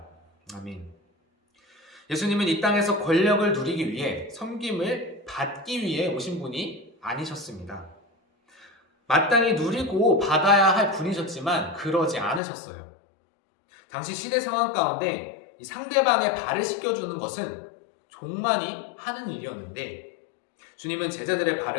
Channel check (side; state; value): right; drops out; at 12.4 s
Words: 아멘. 예수님은 이 땅에서 권력을 누리기 위해 섬김을 받기 위해 오신 분이 아니셨습니다. 마땅히 누리고 받아야 할 분이셨지만 그러지 않으셨어요. 당시 시대 상황 가운데 이 상대방의 발을 씻겨주는 것은 종만이 하는 일이었는데 주님은 제자들의